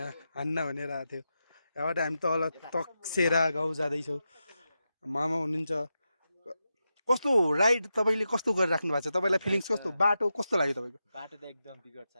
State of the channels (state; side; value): inverted; both; correlation -0.89